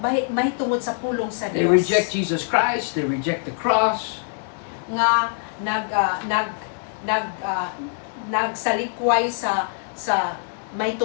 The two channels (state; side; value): silent; right; digital silence